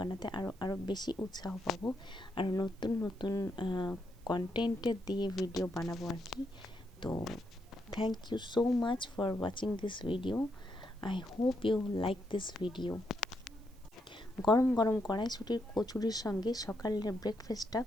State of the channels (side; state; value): right; noise; hiss, 29 dB below the sound